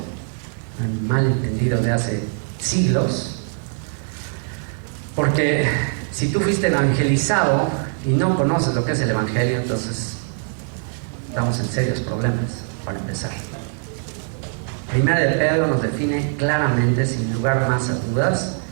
un malentendido de hace siglos, porque si tú fuiste evangelizado y no conoces lo que es el evangelio, entonces estamos en serios problemas. Para empezar, Primera de Pedro nos define claramente, sin lugar más a dudas,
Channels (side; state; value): left; silent; 56 dB below the other